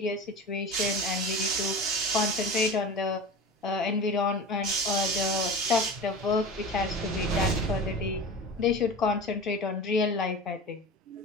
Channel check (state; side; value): normal; both; correlation 0.32